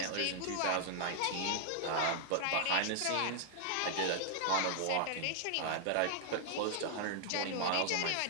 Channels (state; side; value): different; both; correlation 0.00